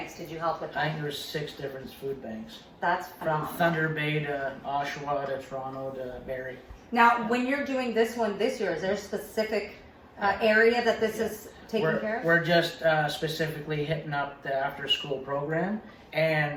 did you help with? I think there were 6 different food banks. That's From phenomenal. Thunder Bay to Oshawa to Toronto to Barrie. Now, when you're doing this one this year, is there a specific area that this is taking care of? We're just specifically hitting up the after-school program,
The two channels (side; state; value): both; identical; correlation 1.00